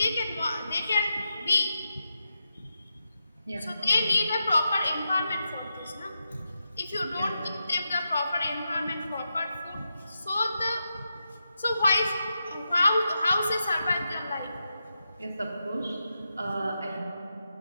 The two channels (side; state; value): both; inverted; correlation -0.87